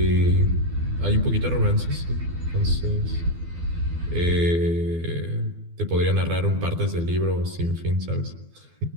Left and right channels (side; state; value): left; late; 12 ms